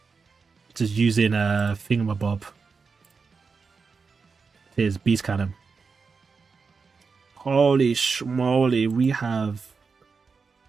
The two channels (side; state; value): left; quieter; 5.0 dB